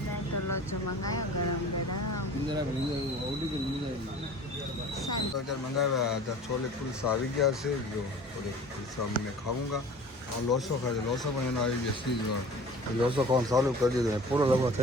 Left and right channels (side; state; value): both; normal; correlation 0.43